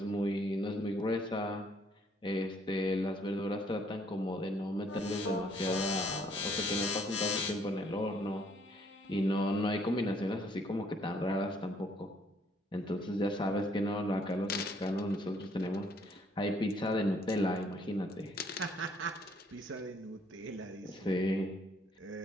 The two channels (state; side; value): normal; both; correlation 0.65